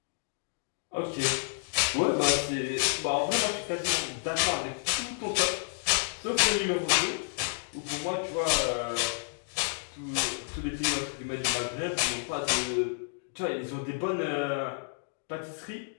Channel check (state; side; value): silent; right; 58 dB below the other